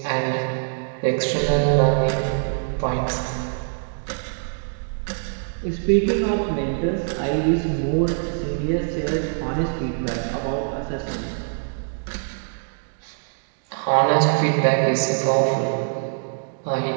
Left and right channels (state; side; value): silent; left; digital silence